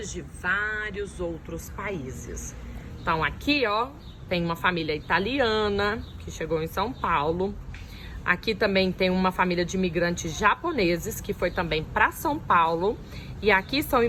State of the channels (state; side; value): identical; both; correlation 1.00